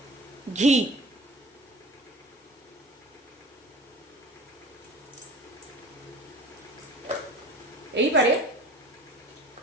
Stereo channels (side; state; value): both; normal; correlation 0.41